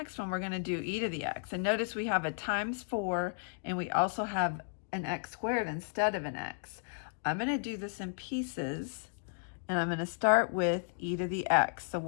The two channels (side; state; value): right; silent; digital silence